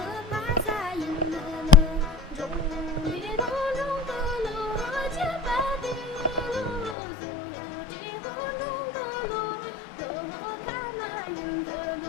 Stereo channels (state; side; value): drops out; right; at 7.0 s